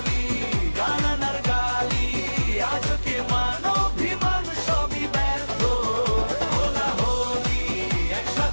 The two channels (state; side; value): inverted; both; correlation -1.00